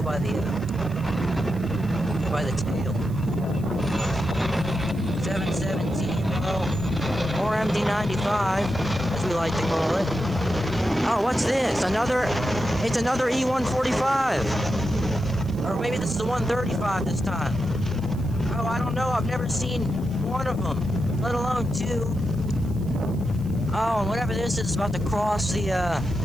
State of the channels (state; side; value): noise; right; hiss, 25 dB below the sound